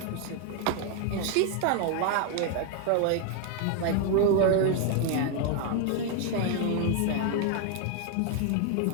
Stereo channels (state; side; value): different; both; correlation 0.01